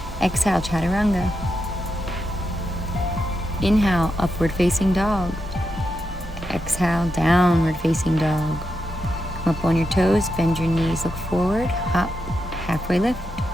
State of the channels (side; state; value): both; normal; correlation 0.86